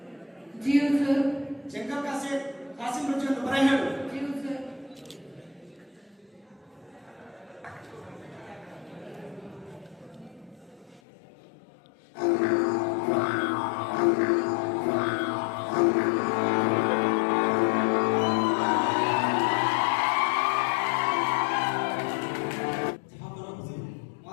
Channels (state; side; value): drops out; right; at 11.0 s